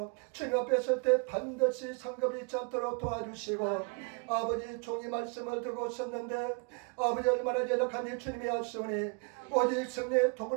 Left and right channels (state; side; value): quieter; left; 35.2 dB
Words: 주님 앞에 설 때 반드시 상급이 있지 않도록 도와주시고 아버지 종이 말씀을 들고 섰는데 아버지 얼마나 연약한지 주님이 아시오니 오직 성령의